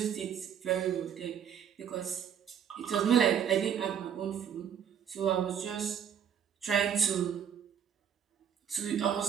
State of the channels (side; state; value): left; quieter; 8.5 dB